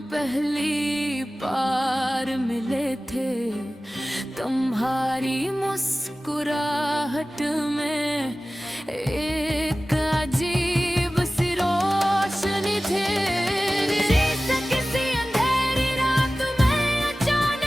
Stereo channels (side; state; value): both; normal; correlation 0.96